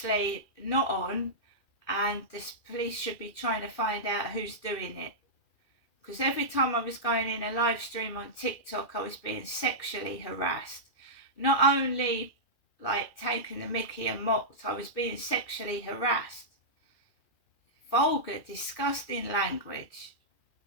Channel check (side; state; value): right; late; 2.4 ms